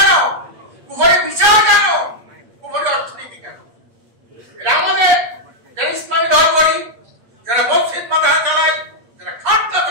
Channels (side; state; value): left; late; 8.5 ms